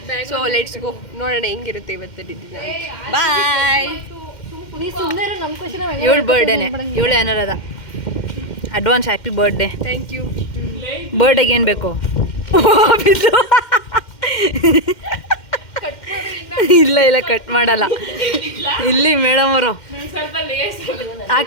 ಸೊ ಲೆಟ್ಸ್ ಗೋ, ನೋಡೋಣ ಹೆಂಗಿರುತ್ತೆ ಇವತ್ತು ದಿನ. ಬಾಯ್. ಇವಳು ಬರ್ಡೇನೆ, ಇವಳು Anuradha. Advance happy birthday. Thank you. ಬರ್ಡೇಗೆ ಏನು ಬೇಕು? ಇಲ್ಲ ಇಲ್ಲ, ಕಟ್ ಮಾಡಲ್ಲ. ಇಲ್ಲಿ ಮೇಡಮ್ ಅವರು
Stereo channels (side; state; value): right; late; 2.1 ms